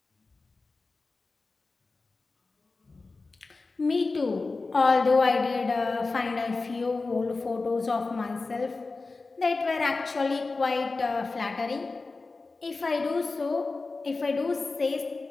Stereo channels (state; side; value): quieter; right; 3.8 dB